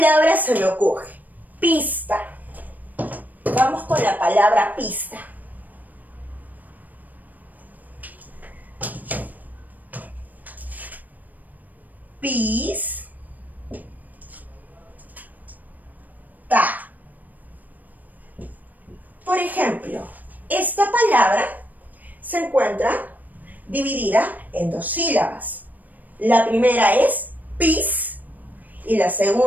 se me ocurre? Pista. Vamos con la palabra pista. Pis, ta. Por ejemplo, esta palabra se encuentra dividida en 2 sílabas. La primera es pis y la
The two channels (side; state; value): left; late; 0.083 ms